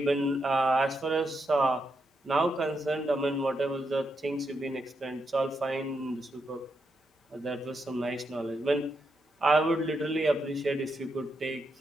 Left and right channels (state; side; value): normal; both; correlation 0.83